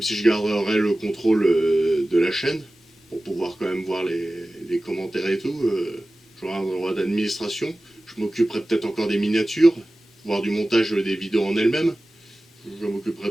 si je garderai le contrôle de la chaîne, pour pouvoir quand même voir les commentaires et tout. j'aurai un droit d'administration, je m'occuperai peut-être encore des miniatures, voire du montage des vidéos en elles-mêmes, je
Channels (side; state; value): both; normal; correlation 0.96